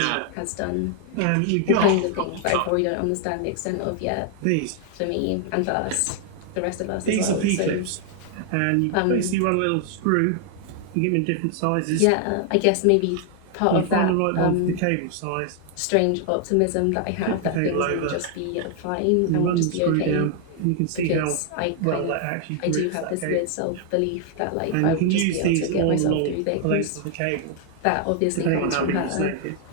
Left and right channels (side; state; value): both; different; correlation 0.00